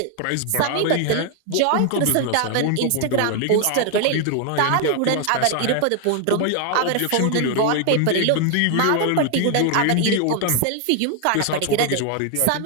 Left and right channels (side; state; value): both; different; correlation 0.00